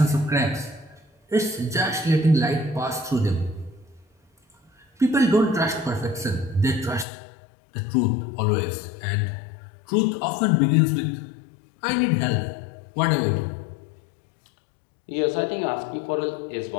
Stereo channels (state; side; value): drops out; right; at 7.1 s